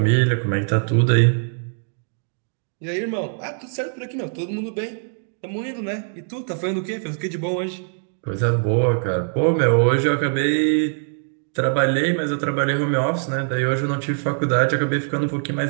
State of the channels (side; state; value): left; silent; digital silence